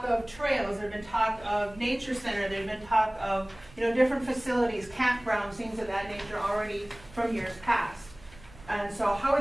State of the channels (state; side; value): noise; right; rumble, 22 dB below the sound